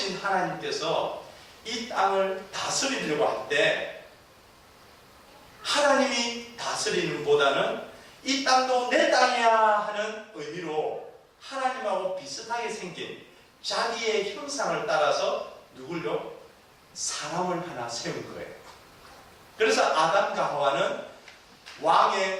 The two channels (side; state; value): both; identical; correlation 1.00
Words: 하나님께서 이 땅을 다스리려고 할 때 하나님이 다스리는 보다는 이 땅도 내 땅이야 하는 의미로 하나님하고 비슷하게 생긴 자기의 형상을 따라서 누굴요? 사람을 하나 세운 거예요. 그래서 아담과 하와는